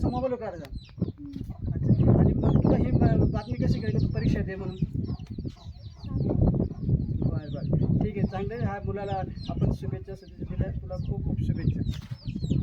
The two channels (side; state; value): both; identical; correlation 1.00